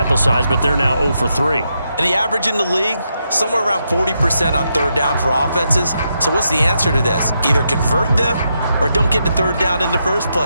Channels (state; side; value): inverted; both; correlation -0.82